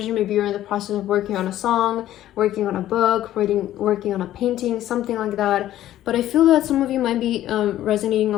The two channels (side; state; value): right; quieter; 13.2 dB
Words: Maybe you're in the process of working on a song, working on a book, working on a painting, something like that. But I feel that some of you might be resonating